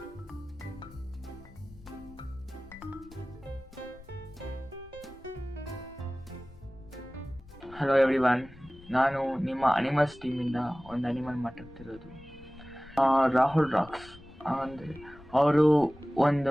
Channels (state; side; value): noise; left; rumble, 21 dB below the sound